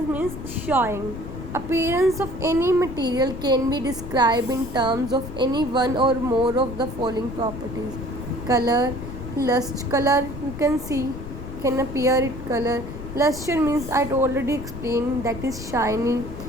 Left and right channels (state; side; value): noise; left; rumble, 10 dB below the sound